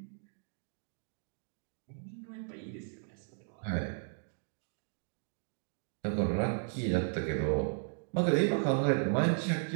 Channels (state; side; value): silent; left; digital silence